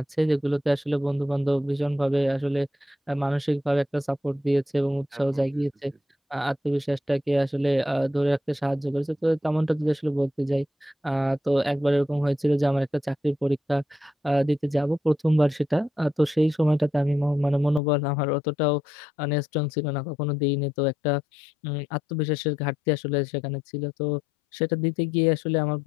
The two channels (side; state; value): right; drops out; at 17.8 s